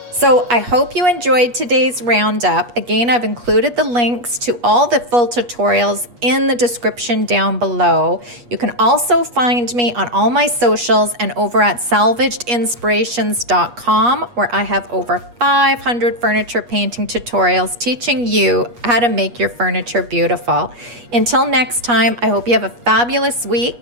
So I hope you enjoyed today's roundup. Again, I've included the links to all the full tutorials in the description down below. You can also find me on all my socials and over at salvagedinspirations.com, where I have over 500 furniture painting tutorials teaching you how to make your furniture beautiful. Until next time, I hope you have a fabulous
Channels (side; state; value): left; late; 8.3 ms